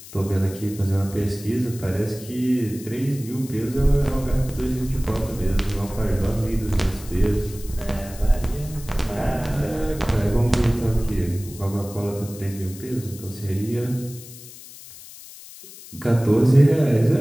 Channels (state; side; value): noise; left; hiss, 17 dB below the sound